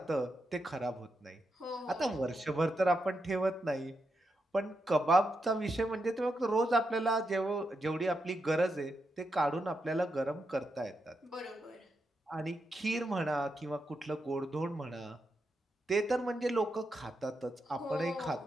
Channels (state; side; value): normal; both; correlation 0.85